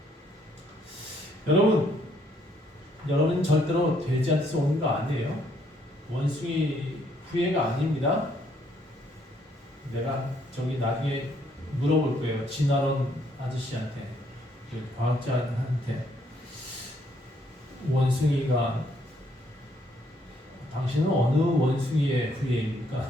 여러분 절대로 돼지한테서 오는 거 아니에요. 원숭이 후예가 아닙니다. 내가 저기 나중에 물어볼 거예요. 진화론 아저씨한테, 그 과학자한테, 원숭이가 당신은 어느 원숭이의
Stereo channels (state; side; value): normal; both; correlation 0.69